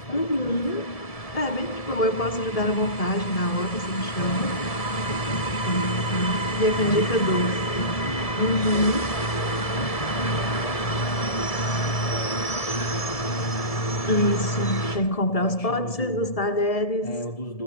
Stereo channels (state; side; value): late; right; 1.7 ms